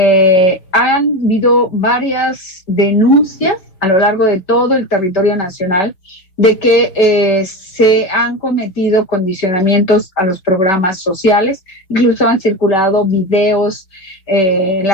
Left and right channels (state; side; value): late; right; 5.3 ms